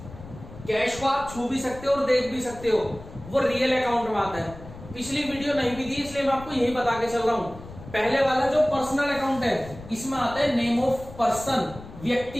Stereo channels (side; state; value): left; noise; rumble, 16 dB below the sound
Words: कैश को आप छू भी सकते हो और देख भी सकते हो, वो रियल अकाउंट में आता है। पिछली वीडियो नहीं भी दी इसलिए मैं आपको यही बता के चल रहा हूं। पहले वाला जो पर्सनल अकाउंट है, इसमें आता है नेम ऑफ पर्सन,